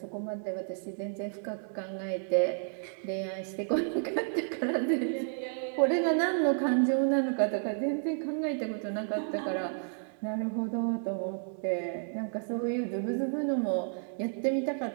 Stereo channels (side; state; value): left; silent; digital silence